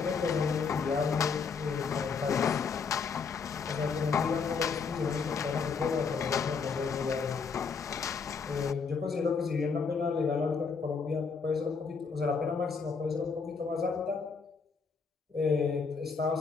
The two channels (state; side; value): quieter; right; 5.3 dB